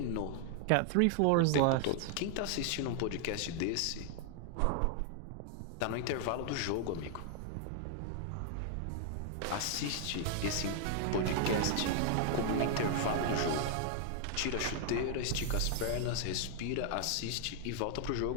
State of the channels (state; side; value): different; both; correlation 0.00